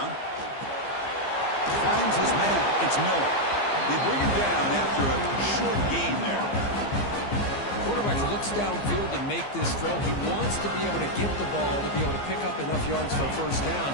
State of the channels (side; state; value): right; late; 15 ms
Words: Finds his man. It's Miller. They bring him down after a short gain there. Quarterback looks downfield to make this throw. He wants to be able to get the ball to be able to pick up enough yards for a first down.